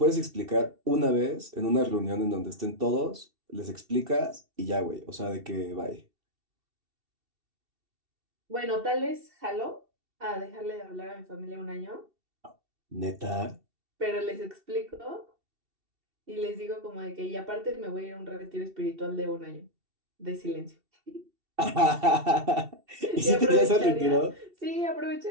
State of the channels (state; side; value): late; left; 2.7 ms